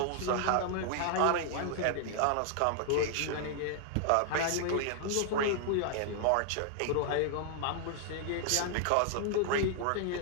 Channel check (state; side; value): different; both; correlation 0.00